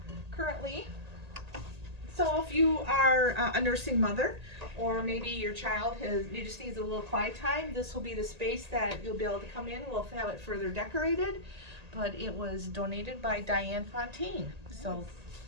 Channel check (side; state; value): left; late; 1.8 ms